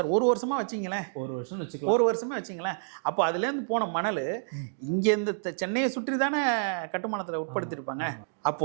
1 வருஷமா வச்சிங்களேன், 1 வருஷம் வச்சுக்கலாம், 1 வருஷமே வச்சிங்களேன். அப்போ அதுலேருந்து போன மணல் இங்கேருந்து சென்னையை சுற்றி தானே கட்டுமானத்தில் உட்படுத்தியிருப்பாங்க.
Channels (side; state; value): left; silent; digital silence